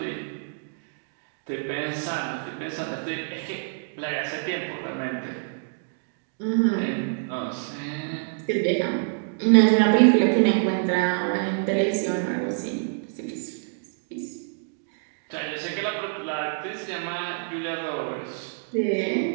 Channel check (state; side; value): silent; left; digital silence